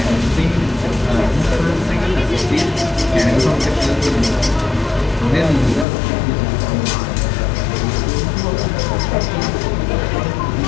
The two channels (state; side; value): drops out; right; at 5.9 s